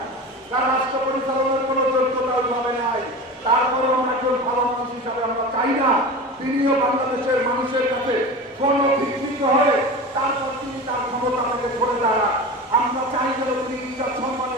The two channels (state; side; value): normal; both; correlation 0.30